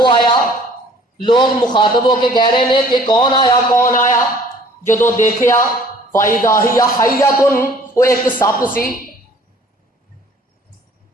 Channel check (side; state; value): both; normal; correlation 0.54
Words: آیا، لوگ مخاطب ہو کے کہہ رہے نے کہ کون آیا کون آیا، جدو دیکھیا فَإِذَا هِيَ حَيَّةٌ، وہ ایک سپ سی۔